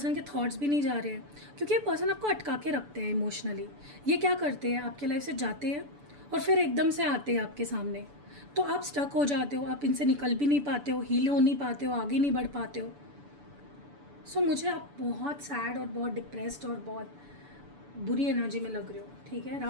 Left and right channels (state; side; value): late; left; 6.9 ms